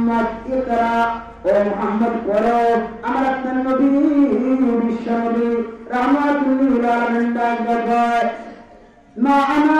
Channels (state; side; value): identical; both; correlation 1.00